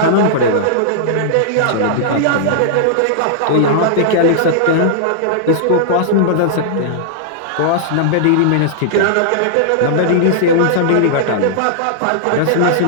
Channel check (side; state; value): both; different; correlation -0.01